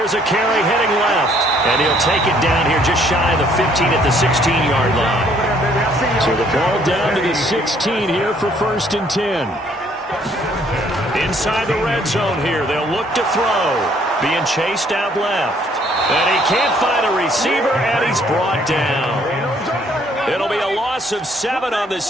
a carry heading left. And he'll take it down here just shy of the 15 at the 16-yard line. So the ball down to the 16 here for 1st and 10. Inside the red zone here. They'll look to throw. Being chased out left. And he can't find a receiver, and he's brought down. It'll be a loss of 7 on the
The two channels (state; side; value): normal; both; correlation 0.64